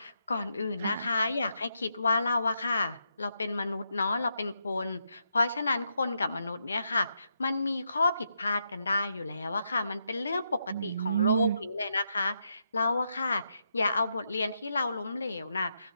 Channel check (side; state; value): both; inverted; correlation -0.81